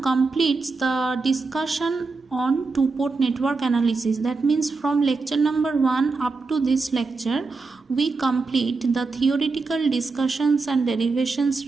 completes the discussion on two-port network analysis. That means from lecture number 1 up to this lecture, we complete the theoretical discussions and derivations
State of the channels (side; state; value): left; quieter; 4.1 dB